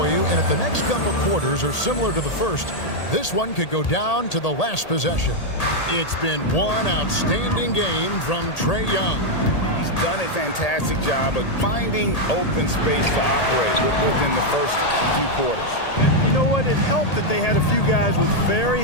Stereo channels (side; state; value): right; late; 1.8 ms